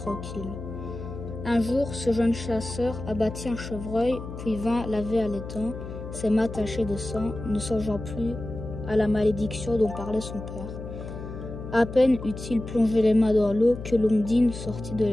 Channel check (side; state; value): left; noise; hum, 10 dB below the sound